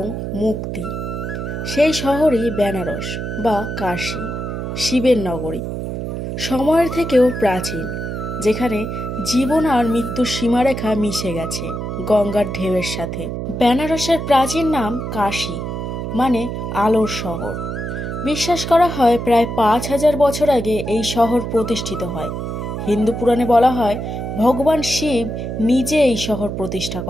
মুক্তি। সেই শহরই বেনারস বা কাশী, শিবের নগরী। সময়ের থেকেও প্রাচীন, যেখানে জীবন আর মৃত্যুর সীমারেখা মিশে গেছে গঙ্গার ঢেউয়ের সাথে। বেনারসের প্রাচীন নাম কাশী, মানে আলোর শহর। বিশ্বাস করা হয় প্রায় 5,000 বছর আগে এই শহর প্রতিষ্ঠিত হয়। হিন্দু পুরাণে বলা হয় ভগবান শিব নিজে এই শহর প্রতিষ্ঠা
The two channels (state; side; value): noise; right; hum, 5 dB below the sound